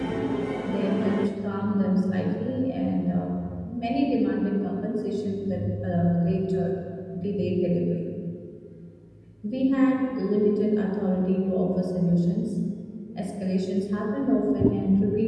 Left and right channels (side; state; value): both; identical; correlation 1.00